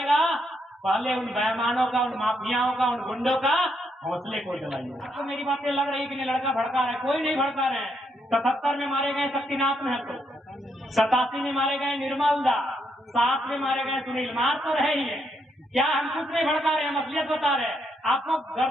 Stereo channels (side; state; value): both; normal; correlation 0.77